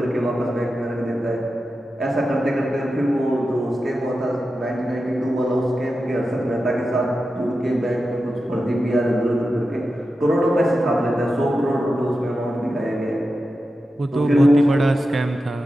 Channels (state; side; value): normal; both; correlation 0.91